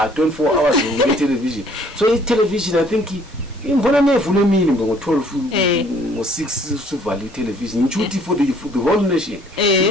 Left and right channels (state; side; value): normal; both; correlation 0.60